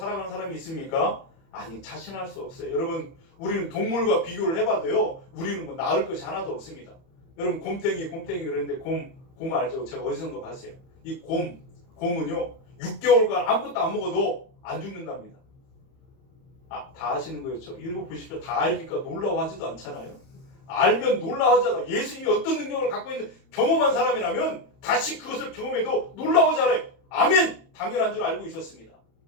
사람이 있습니까? 아니, 자신할 수 없어요. 여러분, 우리는 동물과 비교를 해봐도요, 우리는 뭐 나을 것이 하나도 없습니다. 여러분, 곰탱이 그랬는데 곰 알죠? 제가 어디선가 봤어요. 이 곰은요 6개월간 아무것도 안 먹어도 안 죽는답니다. 아, 다 아시는 거였죠? 이러고 보십시오. 다 알니까 놀라워하지도 않잖아요. 알면 놀라워하잖아. 예수님이 어떤 능력을 갖고 있는 경험한 사람이라면 다시 그것을 경험해도 놀라워하잖아요. 아멘! 당연한 줄 알고 있었습니다.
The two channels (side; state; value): right; late; 31 ms